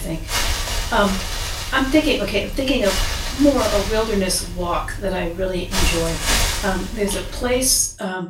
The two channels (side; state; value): both; identical; correlation 1.00